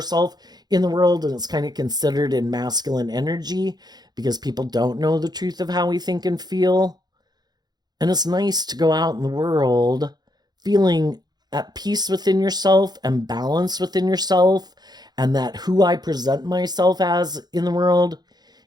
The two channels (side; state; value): left; late; 0.20 ms